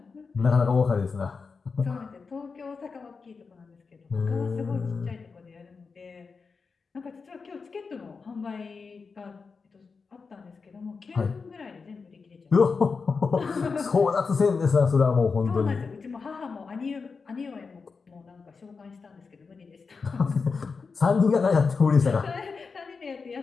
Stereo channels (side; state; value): right; quieter; 4.9 dB